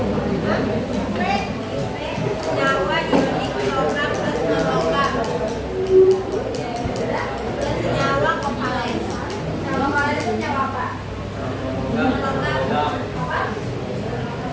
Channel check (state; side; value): identical; both; correlation 1.00